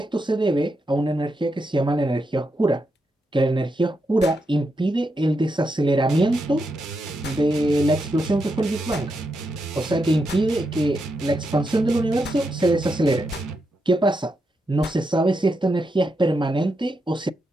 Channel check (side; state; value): both; normal; correlation 0.84